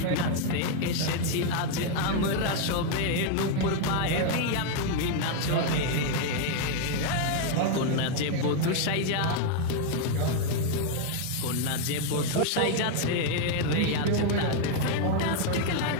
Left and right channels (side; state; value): both; different; correlation 0.00